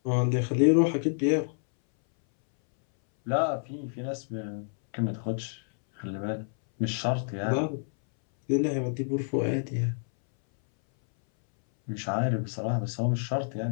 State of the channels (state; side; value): silent; right; 59 dB below the other